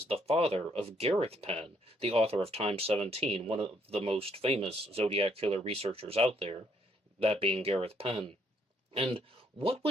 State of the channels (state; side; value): normal; both; correlation 0.70